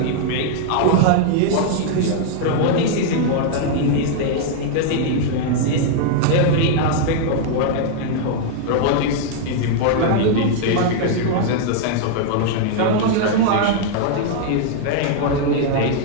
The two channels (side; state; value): both; different; correlation -0.01